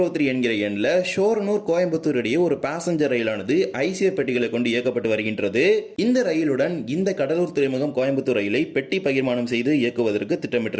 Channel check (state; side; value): identical; both; correlation 1.00